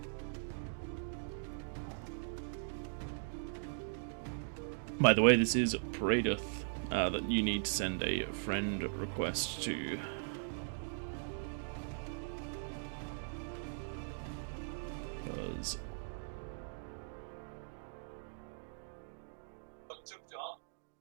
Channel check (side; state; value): left; silent; digital silence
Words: By the way, this is Pradith that you need to send a friend request to. Because